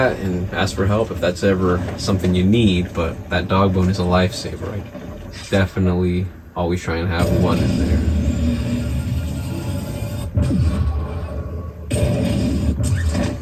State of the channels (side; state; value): both; identical; correlation 1.00